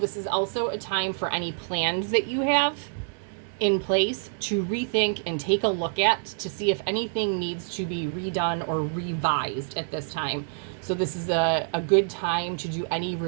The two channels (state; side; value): silent; left; digital silence